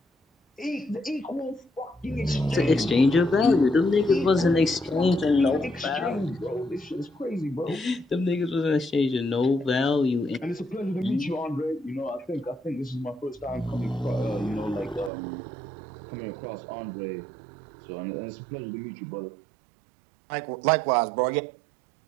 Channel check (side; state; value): left; drops out; at 15.1 s